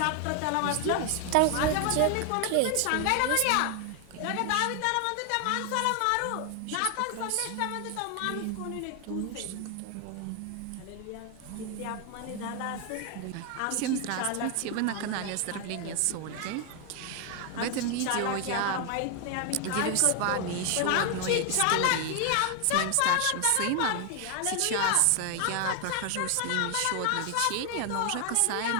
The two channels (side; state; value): both; different; correlation 0.01